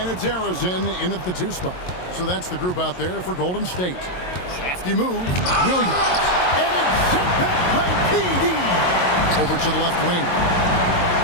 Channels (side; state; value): right; late; 22 ms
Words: it's Arizin in at the 2 spot. So that's the group out there for Golden State. Crafty move, Williams, and it's sent back by KD. Over to the left wing.